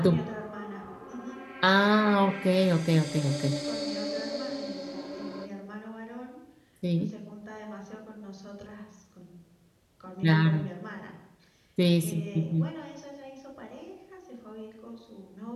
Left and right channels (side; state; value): both; identical; correlation 1.00